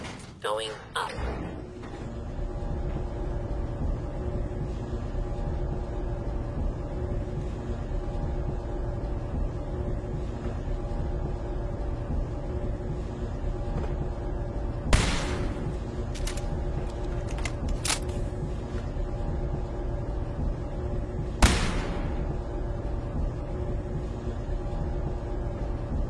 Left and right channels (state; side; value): identical; both; correlation 1.00